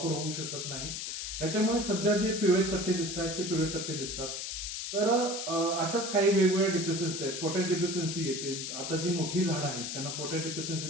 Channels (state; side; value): noise; left; hiss, 5 dB below the sound